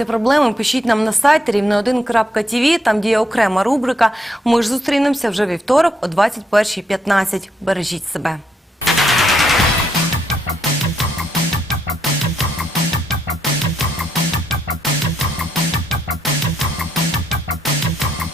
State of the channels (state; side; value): normal; both; correlation 0.76